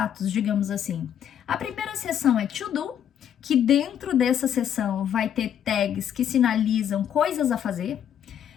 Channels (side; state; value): right; quieter; 9.5 dB